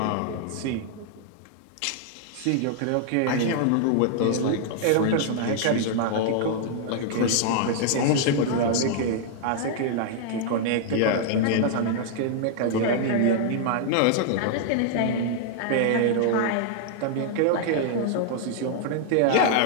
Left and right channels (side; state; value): both; different; correlation -0.01